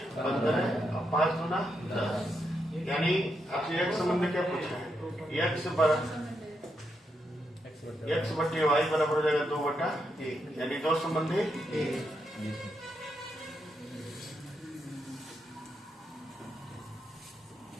15 और 5 गुना 10। यानी आपसे एक संबंध में क्या पूछा है? x बटे y बराबर हो जाएगा 2/1, यानी 2 संबंध है 1।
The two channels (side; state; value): both; normal; correlation 0.82